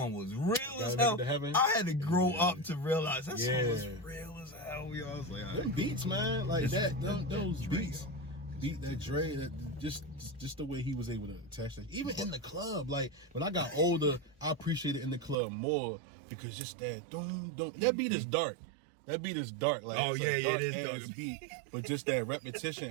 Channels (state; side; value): drops out; left; at 15.4 s